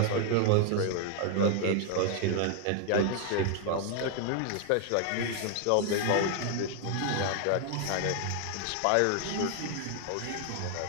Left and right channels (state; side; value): different; both; correlation 0.00